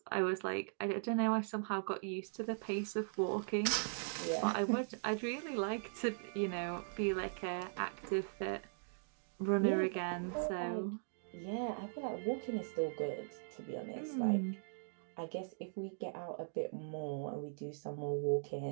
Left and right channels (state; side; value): silent; left; digital silence